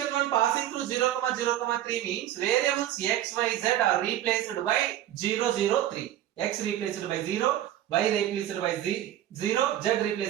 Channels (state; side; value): quieter; left; 12.4 dB